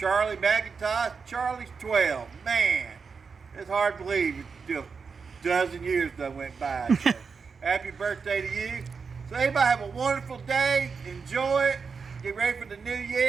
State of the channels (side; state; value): left; quieter; 5.4 dB